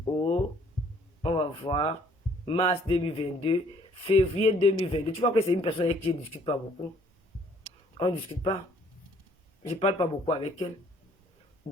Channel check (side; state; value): both; normal; correlation 0.61